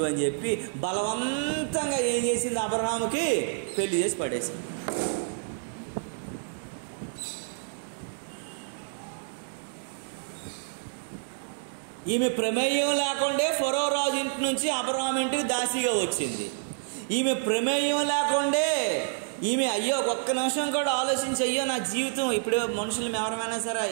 అని చెప్పి బలవంతంగా ఏం చేసింది, అబ్రహాముకి పెళ్లి చేసి పడేసింది. ఈమె ప్రమేయం లేకుండే ఫరో రాజు ఇంటి నుంచి అబ్రహాం ఇంటికి దాసిగా వచ్చింది. ఈమె ప్రమేయం లేకుండే ఈమె అయ్యో ఒక్క నిమిషం కూడా ఆలోచించి అయ్యో నా జీవితం, ఇప్పుడు మనుషులు ఎవరైనా సరే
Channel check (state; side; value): silent; left; digital silence